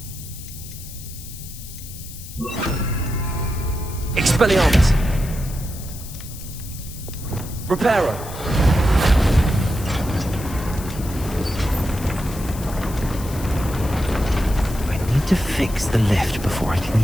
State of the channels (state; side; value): noise; left; hiss, 14 dB below the sound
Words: Expelliarmus! Reparo! To fix the lift before I